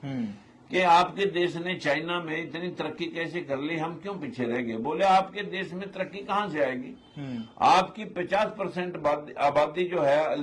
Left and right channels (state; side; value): identical; both; correlation 1.00